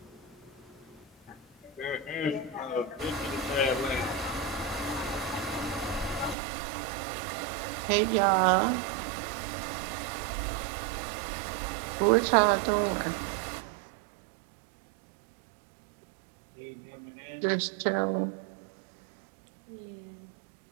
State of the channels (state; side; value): drops out; left; at 6.4 s